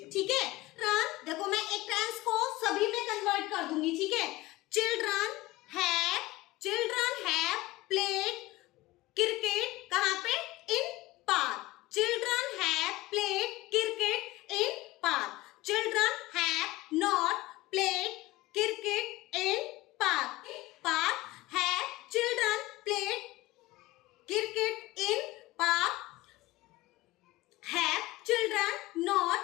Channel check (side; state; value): right; quieter; 18.7 dB